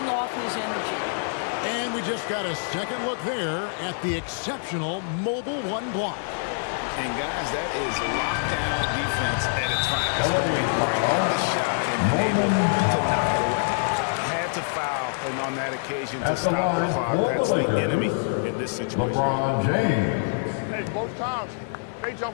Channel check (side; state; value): right; silent; digital silence